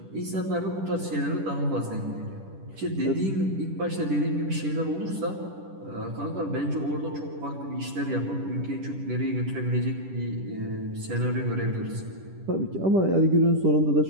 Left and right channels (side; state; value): left; late; 10 ms